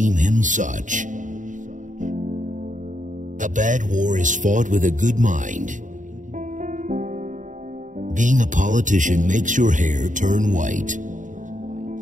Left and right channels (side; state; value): left; late; 0.37 ms